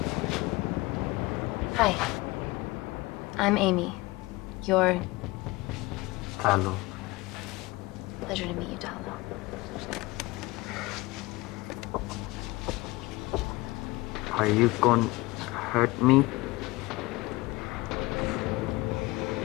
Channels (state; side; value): quieter; right; 21.8 dB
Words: Hi. I'm Amy. You're... Hello. Pleasure to meet you, Talo. Are you gonna hurt me?